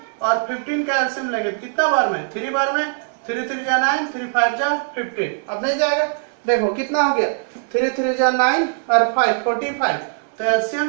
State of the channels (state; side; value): silent; left; 65 dB below the other